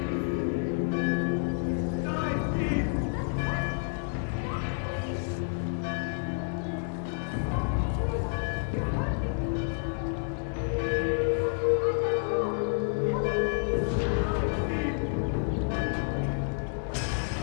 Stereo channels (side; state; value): right; silent; digital silence